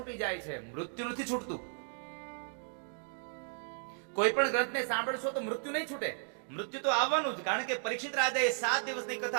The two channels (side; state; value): left; silent; 55 dB below the other